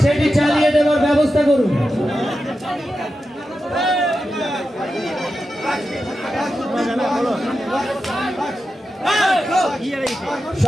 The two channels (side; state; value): both; normal; correlation 0.90